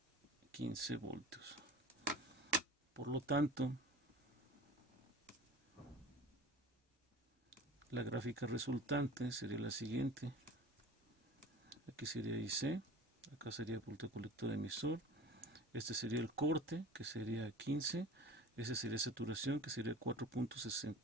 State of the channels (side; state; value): both; normal; correlation 0.39